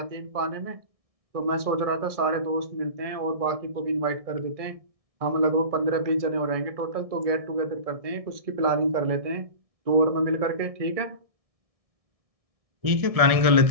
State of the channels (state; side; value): late; left; 1.6 ms